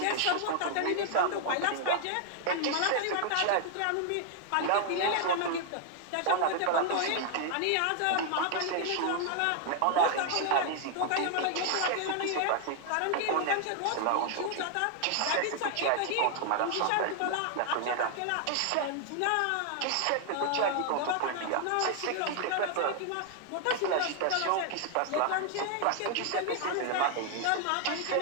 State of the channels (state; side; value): different; both; correlation 0.00